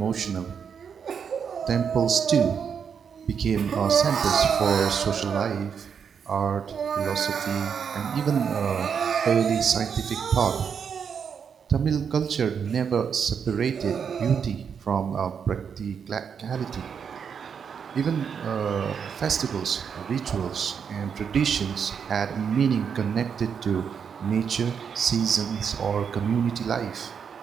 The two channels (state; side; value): quieter; left; 7.0 dB